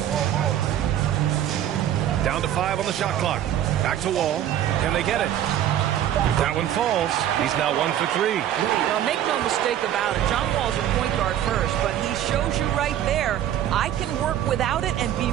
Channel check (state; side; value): quieter; left; 11.2 dB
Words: Down to 5 on the shot clock. Back to Wall. Can they get it? That one falls. He's now 1 for 3. Well, make no mistake about it. John Wall's a point guard first, but he shows you right there, I can work without it and be